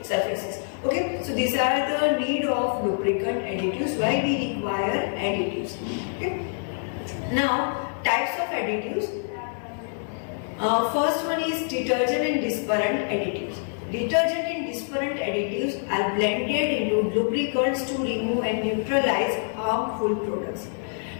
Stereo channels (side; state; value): right; silent; 60 dB below the other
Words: surfaces. Okay, so these are the need of lubricant additives, why we require additives. Okay. Now, types of additives. First one is detergent and dispersion additives. Detergent and dispersion additives are blended into lubricants to remove and neutralize harmful products.